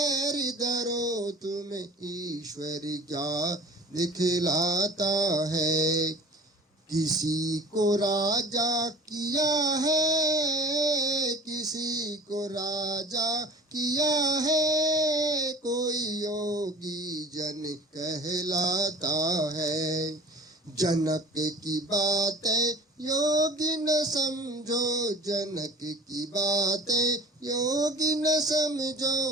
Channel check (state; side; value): normal; both; correlation 0.43